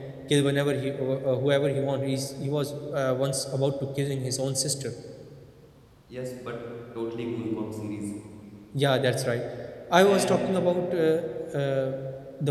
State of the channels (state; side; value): identical; both; correlation 1.00